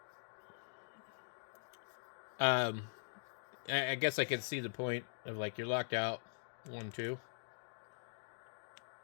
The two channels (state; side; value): silent; right; digital silence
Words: I guess I can see the point of, like, you're locked out. 1, 2.